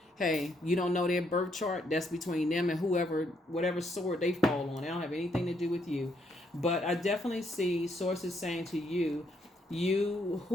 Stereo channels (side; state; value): both; normal; correlation 0.74